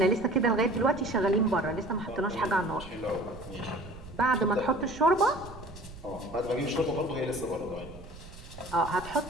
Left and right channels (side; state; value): right; noise; rumble, 16 dB below the sound